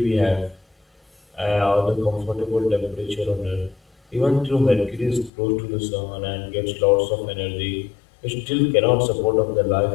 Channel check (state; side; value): drops out; right; at 5.3 s